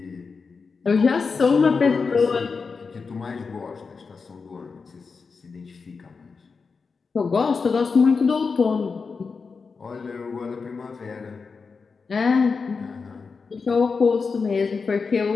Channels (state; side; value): quieter; right; 4.9 dB